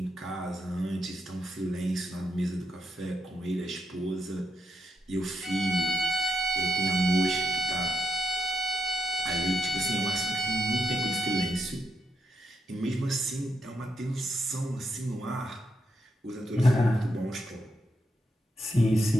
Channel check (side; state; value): both; normal; correlation 0.82